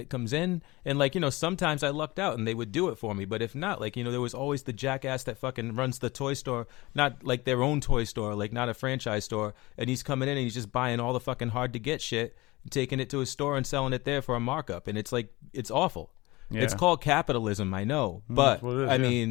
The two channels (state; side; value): quieter; right; 21.4 dB